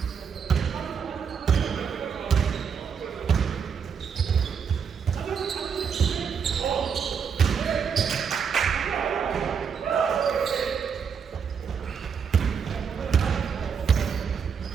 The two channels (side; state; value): left; quieter; 6.8 dB